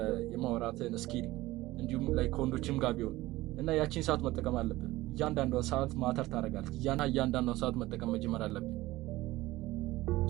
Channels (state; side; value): quieter; left; 18.1 dB